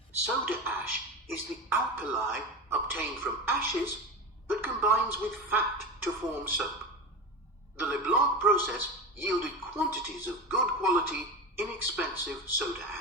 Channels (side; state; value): both; normal; correlation 0.24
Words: Soda ash is the alkali obtained from ashes that combines with fat to form soap. The Leblanc process yielded quantities of good quality, inexpensive soda